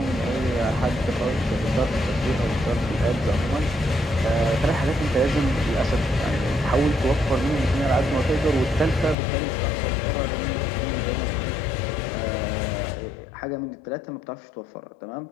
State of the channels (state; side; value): drops out; right; at 9.2 s